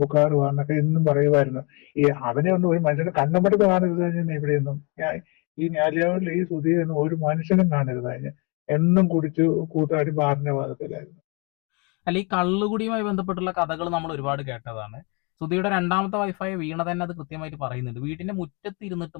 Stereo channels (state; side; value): quieter; right; 31.5 dB